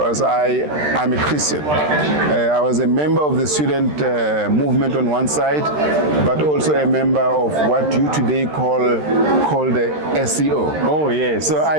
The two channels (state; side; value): late; left; 13 ms